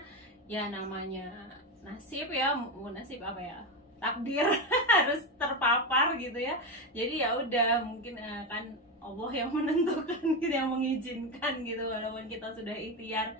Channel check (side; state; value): both; normal; correlation 0.15